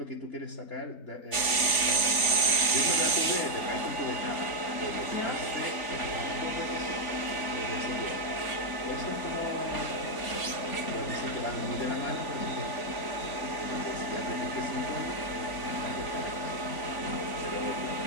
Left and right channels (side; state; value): right; late; 3.5 ms